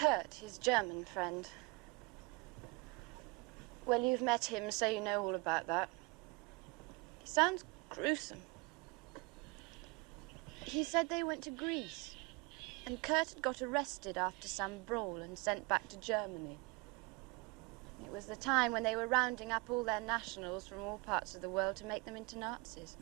his German friend. Well, you've met him, so you know all about that. He sounds gruesome. He said they went to Greece, and Kurt had got arrested after some brawl and sent back to Germany. It was the time when they were rounding up all their nationals from all parts of the world to make them into Nazis.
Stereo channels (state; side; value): quieter; left; 25.8 dB